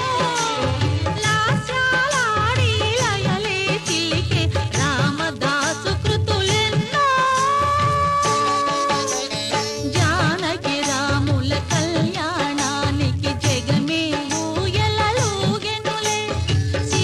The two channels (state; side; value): identical; both; correlation 1.00